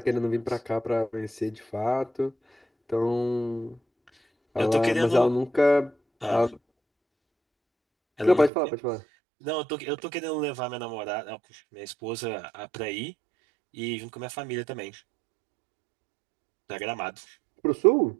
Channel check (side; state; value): left; drops out; at 8.5 s